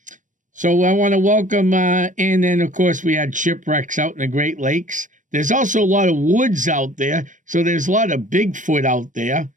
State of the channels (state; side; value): late; left; 0.37 ms